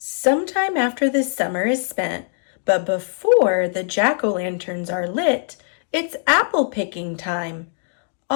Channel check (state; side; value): silent; right; digital silence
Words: after the summer is spent, but before the jack-o'-lanterns are lit, it's apple picking time.